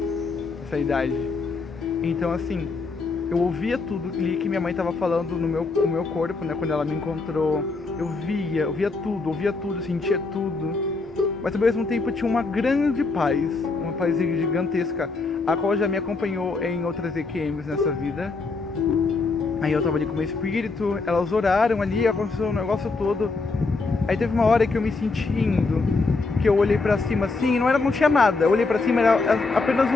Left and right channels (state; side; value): quieter; right; 3.9 dB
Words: nessa idade. Então assim, eu ouvia tudo ali que minha mãe estava falando no meu corpo, né? Quando ela me encontrou, eu ouvia tudo, sentia tudo. Mas ao mesmo tempo eu tinha uma grande paz, uma paz gigantesca, a qual já me acompanhou em outras EQMs nessa vida. Aí eu tava ali com o meu espírito, elas oraram ali, aconteceu o negócio todo. Aí teve uma hora que eu me senti indo, que eu olhei pra cima assim, não tinha nada. Eu olhei pra cima, era apenas